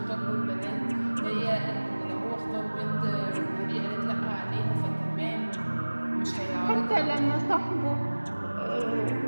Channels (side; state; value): both; inverted; correlation -1.00